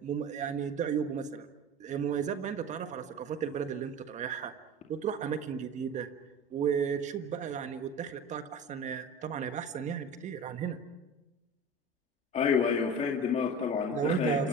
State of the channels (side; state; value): both; normal; correlation 0.34